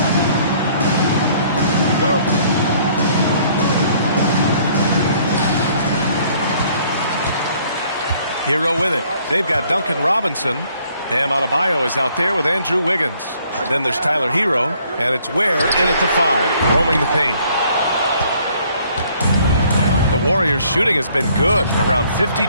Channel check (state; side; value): inverted; both; correlation -0.62